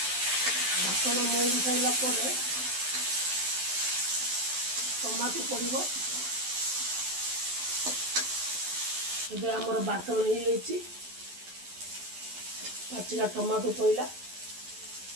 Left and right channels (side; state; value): left; late; 11 ms